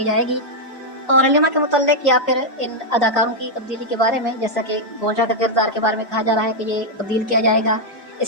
جائے گی۔ اور حلیمہ کے متعلق یا پھر ان اداکاروں کی تبدیلی کے بارے میں، جیسا کہ گونشا کا کردار کے بارے میں کہا جا رہا ہے کہ یہ تبدیل کیا جائے گا،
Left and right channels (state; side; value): normal; both; correlation -0.02